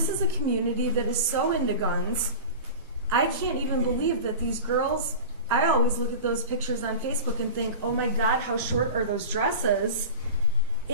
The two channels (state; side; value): inverted; both; correlation -0.33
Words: is a community that is so into guns. I can't even believe that these girls, I always look at those pictures on Facebook and think, oh my God, how short are those dresses?